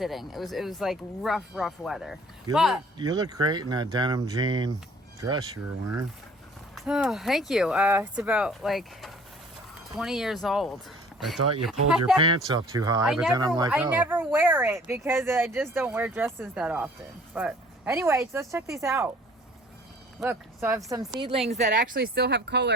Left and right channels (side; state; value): both; normal; correlation 0.52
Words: It was like rough weather. You look great in that denim jean dress you were wearing. Oh, thank you. It's about like 20 years old. I thought you pulled your pants up too high, but then I'm like, oh. I never wear it because I just don't wear dresses that often. But anyways, let's check these out. Look, so I have some seedlings that actually still have